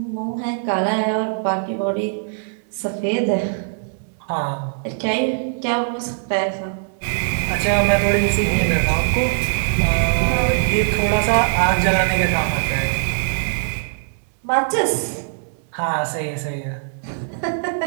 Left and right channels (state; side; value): silent; left; 65 dB below the other